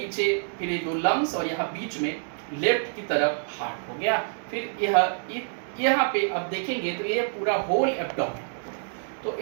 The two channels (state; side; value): silent; left; digital silence